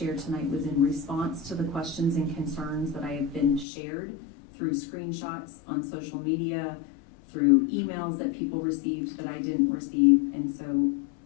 tonight was in response to the questions and concerns that I have been shared through screenshots on social media, through emails that people received that I didn't receive. And so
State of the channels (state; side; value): drops out; right; at 3.7 s